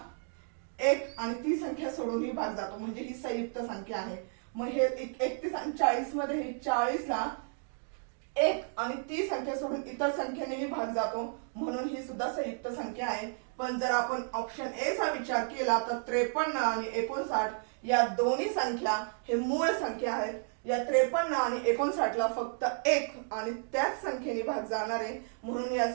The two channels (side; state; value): left; silent; 56 dB below the other